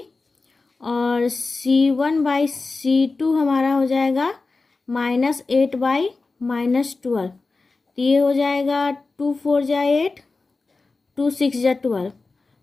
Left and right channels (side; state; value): right; quieter; 3.8 dB